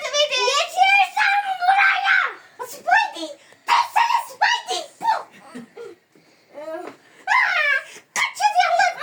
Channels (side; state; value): both; identical; correlation 1.00